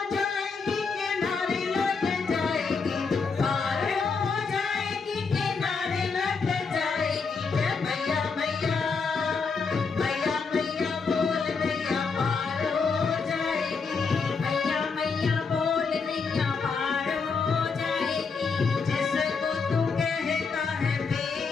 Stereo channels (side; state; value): right; quieter; 5.0 dB